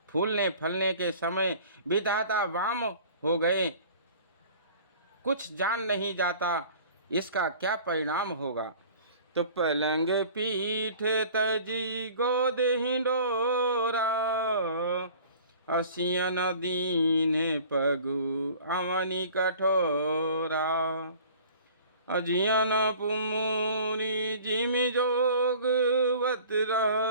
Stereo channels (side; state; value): both; inverted; correlation -0.47